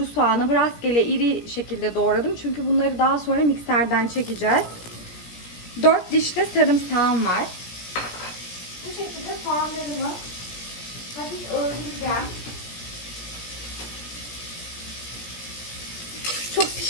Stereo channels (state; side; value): late; right; 17 ms